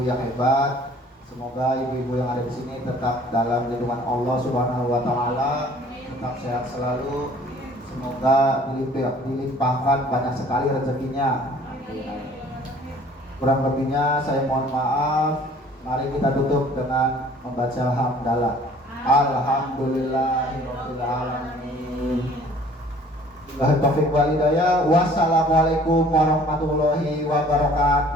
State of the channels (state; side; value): normal; both; correlation 0.53